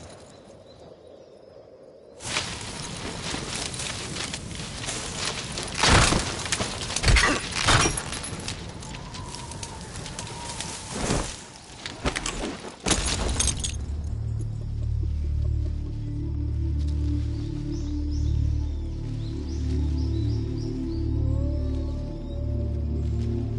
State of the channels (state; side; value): identical; both; correlation 1.00